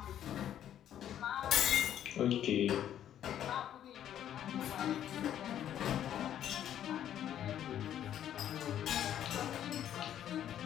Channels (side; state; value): right; quieter; 10.7 dB